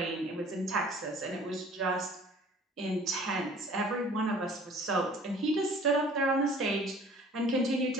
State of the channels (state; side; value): normal; both; correlation 0.50